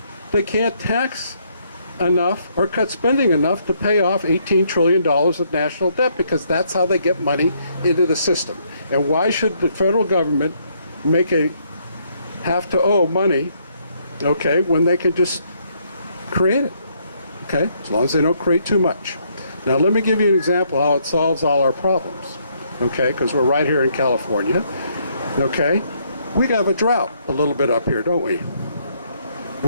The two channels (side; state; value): both; inverted; correlation -0.71